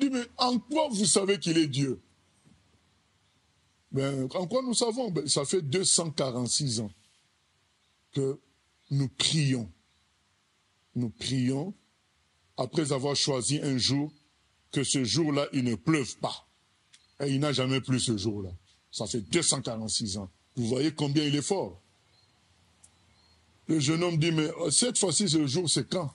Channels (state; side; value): identical; both; correlation 1.00